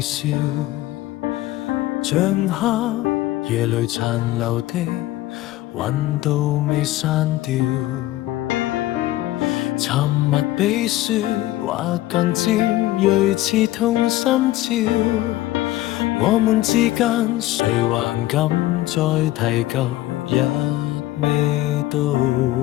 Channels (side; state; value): right; quieter; 15.9 dB